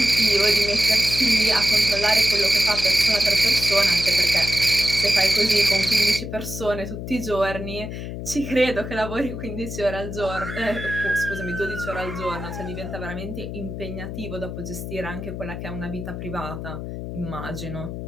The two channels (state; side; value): noise; left; hum, 7 dB below the sound